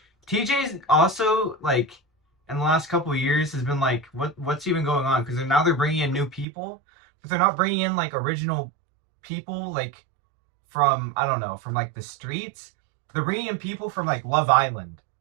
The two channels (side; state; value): left; drops out; at 6.5 s